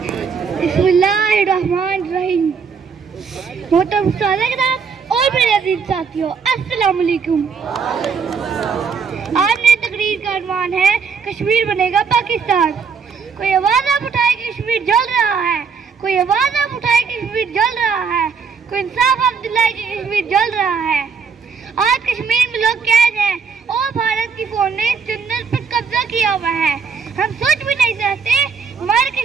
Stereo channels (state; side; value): quieter; left; 5.8 dB